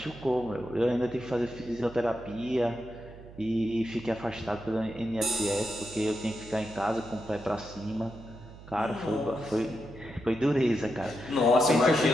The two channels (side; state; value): right; noise; hum, 17 dB below the sound